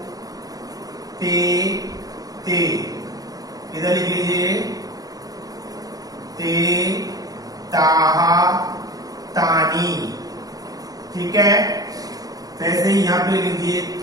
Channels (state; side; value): late; left; 0.18 ms